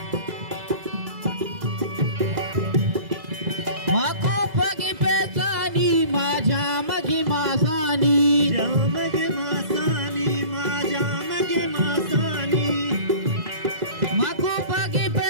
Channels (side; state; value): left; late; 2.0 ms